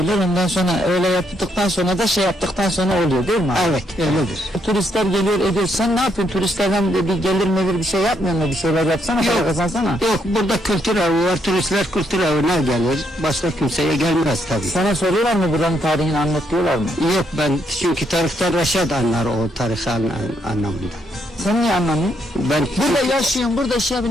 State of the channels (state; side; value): normal; both; correlation 0.75